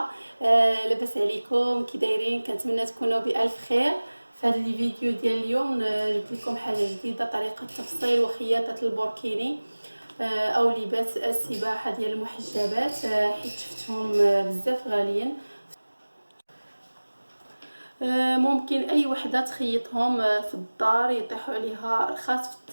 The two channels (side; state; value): both; inverted; correlation -1.00